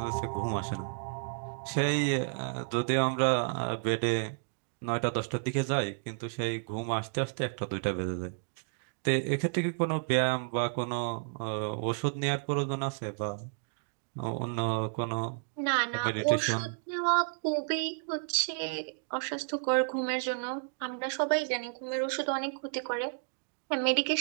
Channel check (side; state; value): left; silent; digital silence